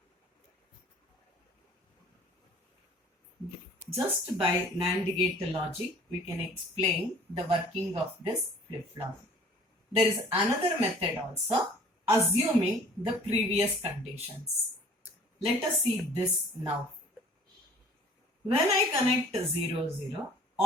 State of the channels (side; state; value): both; normal; correlation 0.51